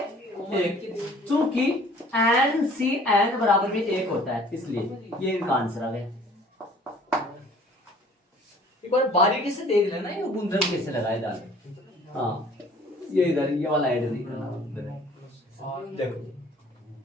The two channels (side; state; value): both; normal; correlation 0.52